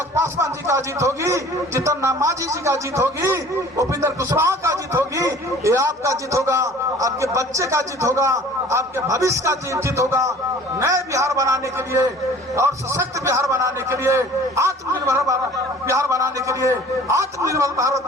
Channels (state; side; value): normal; both; correlation 0.48